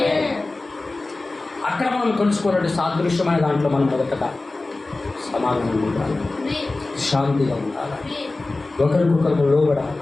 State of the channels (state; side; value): quieter; right; 3.2 dB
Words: అక్కడ మనం తెలుసుకోవాలంటే సాదృశ్యమైన దాంట్లో మనం మొదటగా సమాధానం ఉండాలి, శాంతిగా ఉండాలి, ఒకరికొకరు లోబడాలి,